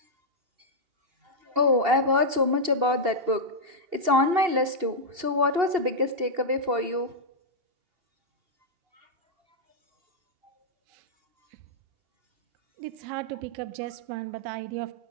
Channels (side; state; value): left; late; 2.8 ms